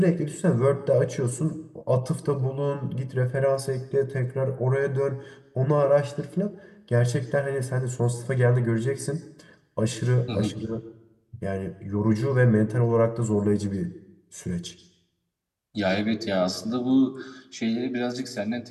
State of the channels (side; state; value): both; identical; correlation 1.00